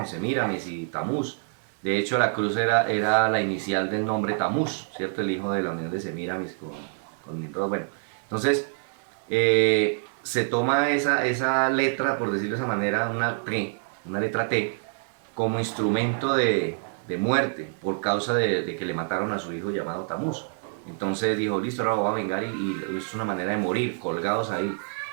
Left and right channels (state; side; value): silent; left; 61 dB below the other